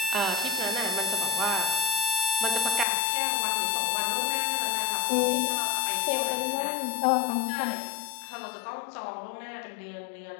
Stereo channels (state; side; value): drops out; right; at 2.9 s